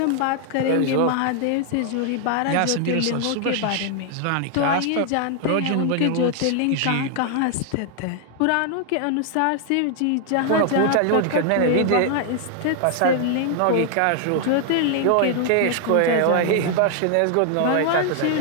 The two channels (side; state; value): both; different; correlation 0.00